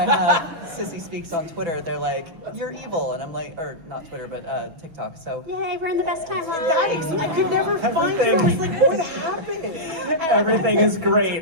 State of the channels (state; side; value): late; left; 6.0 ms